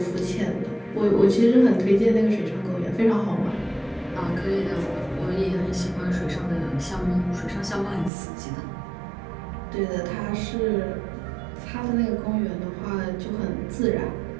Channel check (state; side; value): drops out; left; at 8.1 s